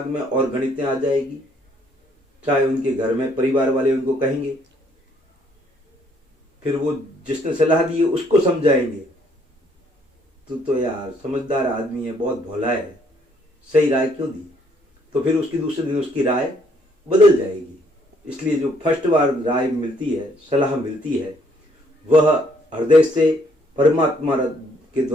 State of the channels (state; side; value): normal; both; correlation 0.66